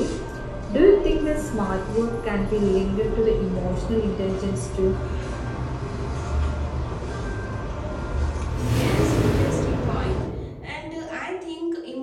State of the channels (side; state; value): both; identical; correlation 1.00